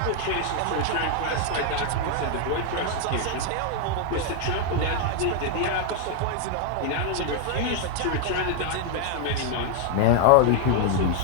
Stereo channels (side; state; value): both; different; correlation 0.00